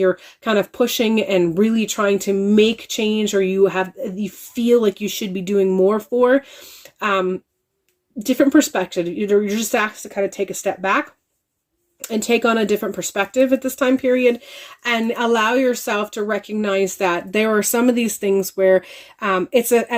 kind of pushing and really trying to make change, or you feel like you should be doing more for. Different perspective. You're just asked to kind of take a step back and take on a different perspective at this time period, and allow yourself to recognize that there are some of these things where it's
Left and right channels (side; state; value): both; identical; correlation 1.00